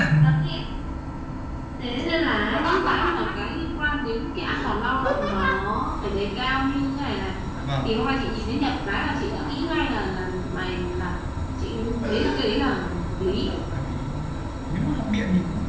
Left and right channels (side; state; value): both; identical; correlation 1.00